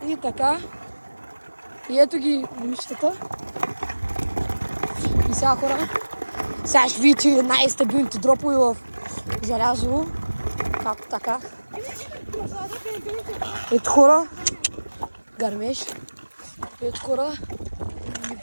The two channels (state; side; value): inverted; both; correlation -1.00